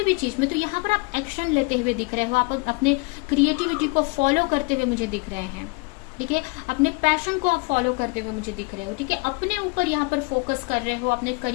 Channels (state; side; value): quieter; right; 29.3 dB